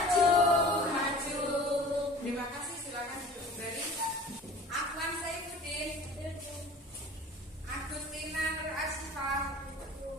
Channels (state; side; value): normal; both; correlation 0.43